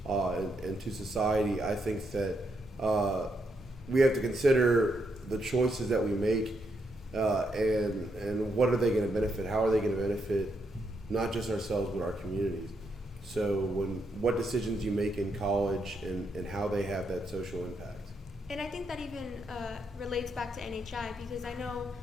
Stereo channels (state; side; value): normal; both; correlation 0.79